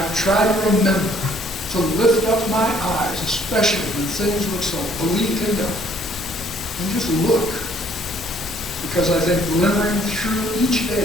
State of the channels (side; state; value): both; normal; correlation 0.62